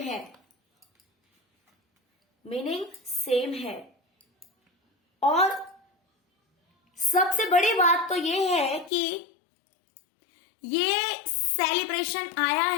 है, मीनिंग सेम है। और सबसे बड़ी बात तो ये है कि ये सेलिब्रेशन आया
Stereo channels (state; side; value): drops out; right; at 8.9 s